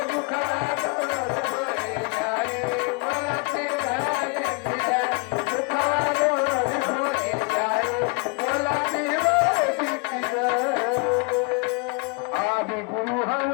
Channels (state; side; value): quieter; right; 32.0 dB